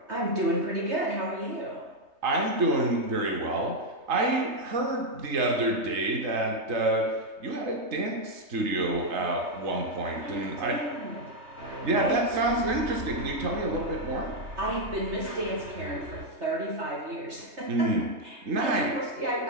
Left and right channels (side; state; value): left; late; 3.2 ms